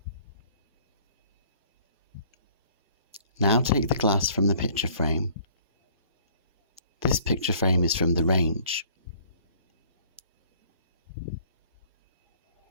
Now take the glass from the picture frame. This picture frame is from the range.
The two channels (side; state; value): both; inverted; correlation -0.56